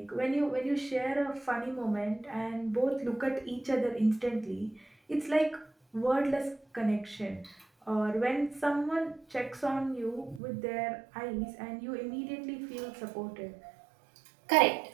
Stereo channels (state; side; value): drops out; left; at 10.4 s